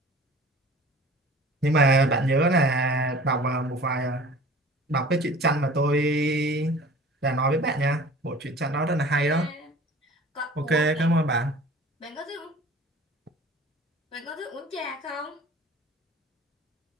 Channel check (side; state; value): both; normal; correlation 0.44